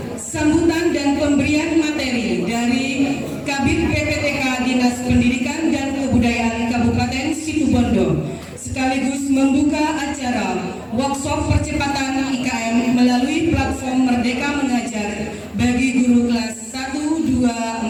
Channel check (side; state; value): both; identical; correlation 1.00